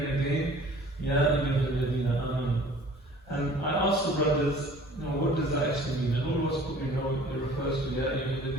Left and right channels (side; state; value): both; normal; correlation 0.49